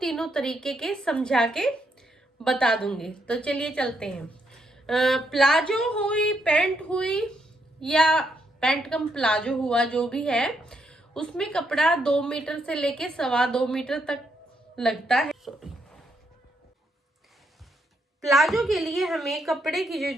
तरीके के समझा के बता दूंगी। तो चलिए चलते हैं। प्लाजो हुई, पैंट हुई या पैंट कम प्लाजो हुआ, जो भी है, उसमें कपड़ा 2 मीटर से लेके 2.25 मीटर तक लगता है। प्लाजो के लिए हमें कपड़े की जो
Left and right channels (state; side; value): normal; both; correlation 0.77